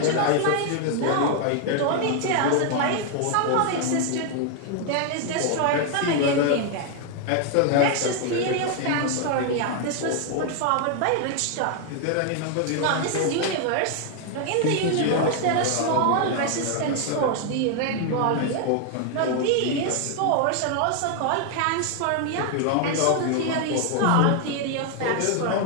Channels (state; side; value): different; both; correlation 0.00